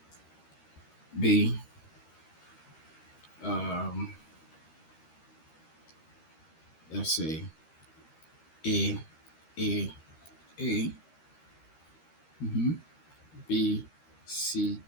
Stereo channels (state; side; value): late; right; 13 ms